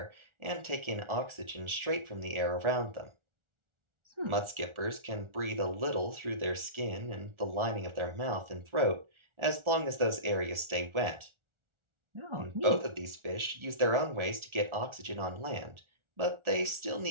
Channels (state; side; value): late; left; 1.4 ms